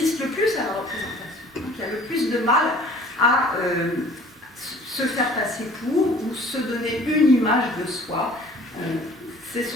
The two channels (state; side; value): normal; both; correlation 0.50